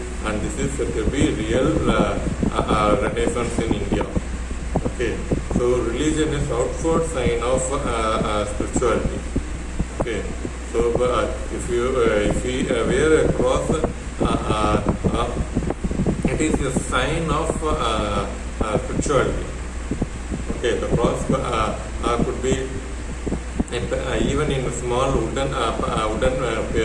And this is said to be real renaissance in India. Okay, so religion is outward sign of spirituality. Okay, so if we wear a cross, it is a sign of spirituality. Okay, the cross could be even in a small wooden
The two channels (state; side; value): identical; both; correlation 1.00